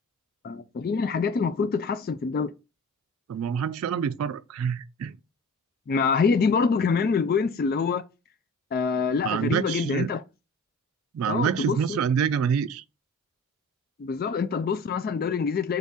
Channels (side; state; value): both; normal; correlation 0.40